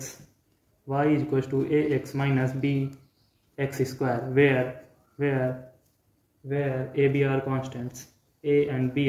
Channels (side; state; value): both; identical; correlation 1.00